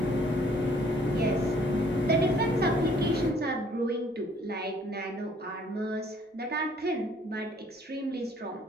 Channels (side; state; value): both; normal; correlation 0.60